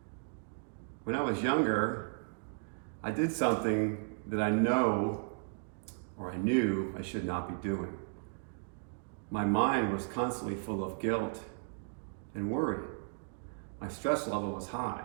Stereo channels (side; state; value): left; silent; digital silence